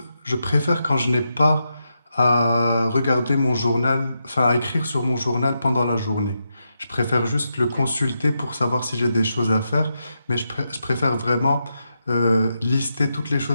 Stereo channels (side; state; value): both; inverted; correlation -0.85